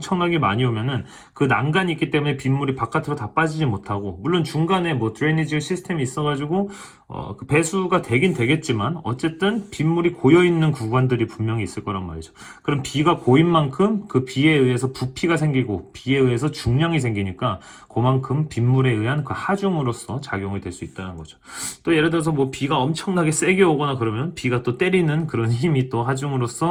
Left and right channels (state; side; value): identical; both; correlation 1.00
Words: 많이 오면은 그 난간이 있기 때문에 빗물이 바깥으로 다 빠지지 못하고, 물론 중간에 뭐 드레이니지 시스템이 있어가지고 그 배수가 되긴 되겠지만 어쨌든 빗물이 고여 있는 구간들이 분명히 있을 거란 말이죠. 그럼 비가 고인 만큼 그 비에 의해서 부피가 생기고 비에 의해서 중량이 생기니까 그만큼 빗물에 의한 그 하중으로서 작용이 될 수 있다는 거죠. 또 예를 들어서 뭐 비가 엄청나게 세게 오거나 그러면 비가 또 때리는 그런 힘이 또